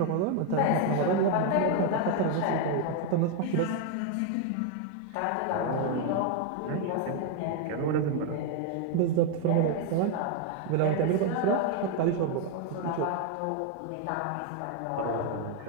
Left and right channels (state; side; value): different; both; correlation 0.01